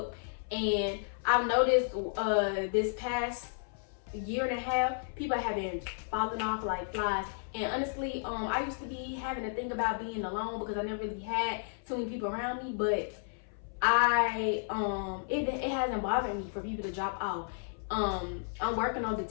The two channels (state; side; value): silent; right; 56 dB below the other